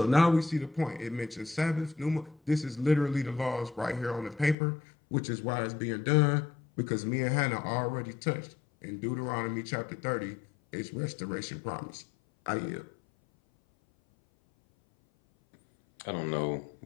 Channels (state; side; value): drops out; right; at 4.5 s